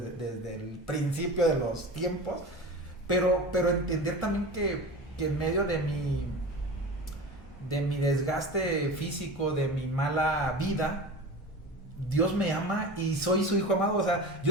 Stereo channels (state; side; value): normal; both; correlation 0.31